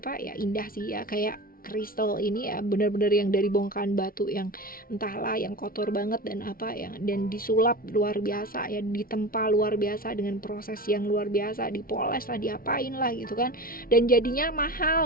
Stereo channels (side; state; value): right; late; 0.43 ms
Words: ya, indah sih ya. Kayak kristal ini ya benar-benar yang dari bongkahan batu yang entahlah yang kotor banget dan dan disulap luar biasa ya, ditempa luar biasa dengan proses yang luar biasa, dipoles lah, diapain lah gitu kan, dan jadinya